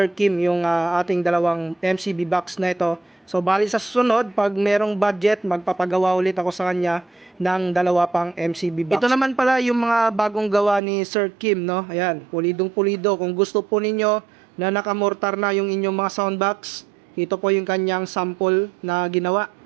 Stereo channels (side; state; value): left; drops out; at 10.8 s